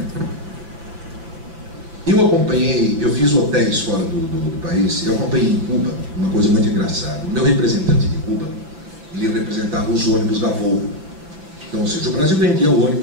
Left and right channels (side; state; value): left; late; 6.1 ms